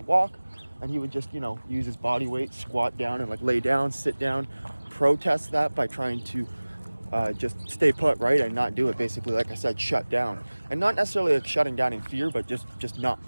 walk and he would just, use his body weight, squat down and like lay down, sit down, protest that by trying to just stay put, right, and not do it. Basically, like I said, shut down. And not necessarily like shutting down in fear, but just not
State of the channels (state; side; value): inverted; both; correlation -1.00